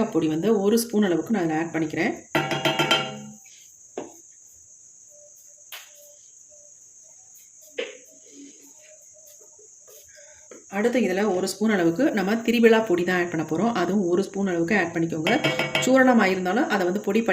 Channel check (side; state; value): both; identical; correlation 1.00